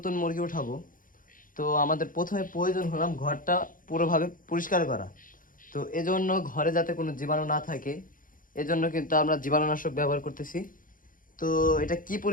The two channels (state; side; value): late; right; 0.40 ms